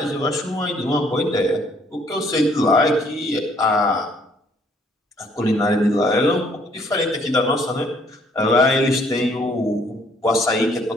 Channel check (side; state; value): both; normal; correlation 0.63